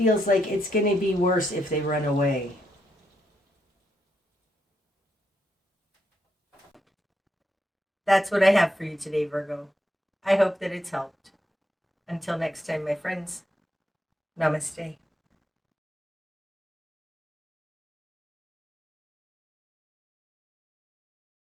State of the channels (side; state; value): both; normal; correlation 0.80